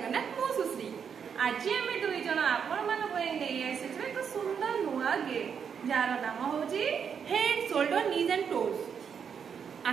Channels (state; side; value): quieter; left; 7.1 dB